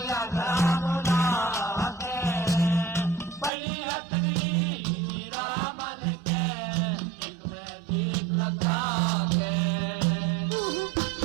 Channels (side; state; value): left; drops out; at 3.5 s